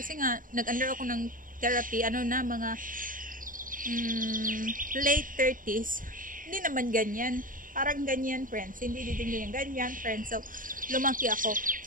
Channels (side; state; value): left; late; 0.40 ms